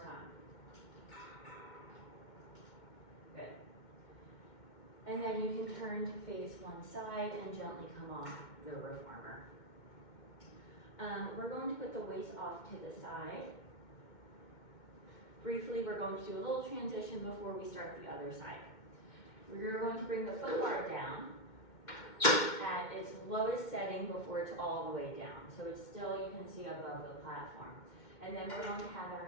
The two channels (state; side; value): late; right; 2.1 ms